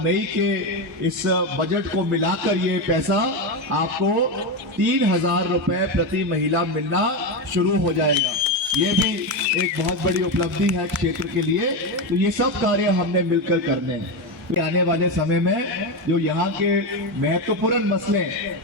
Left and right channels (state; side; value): normal; both; correlation 0.13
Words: मई के इस बजट को मिलाकर ये पैसा आपको 3000 रुपए प्रति महिला मिलना शुरू हो जाएगा। ये भी एक बहुत बड़ी उपलब्धि है क्षेत्र के लिए। तो ये सब कार्य हमने मिलकर करने हैं। आने वाले समय में जो यहाँ के महत्वपूर्ण मसले